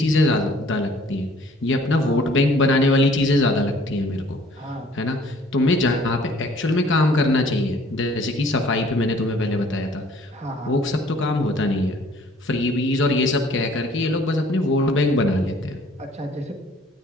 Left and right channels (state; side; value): normal; both; correlation 0.57